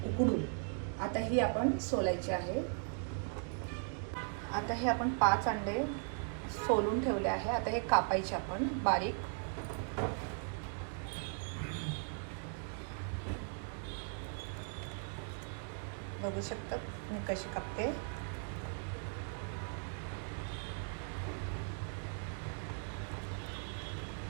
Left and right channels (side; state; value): left; silent; 52 dB below the other